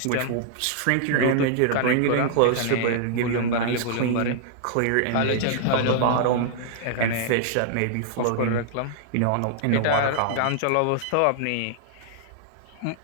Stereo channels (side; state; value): both; different; correlation -0.01